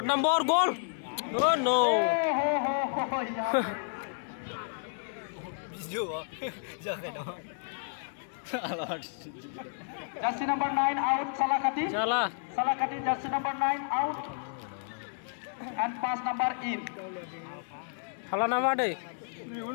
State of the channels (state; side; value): silent; right; digital silence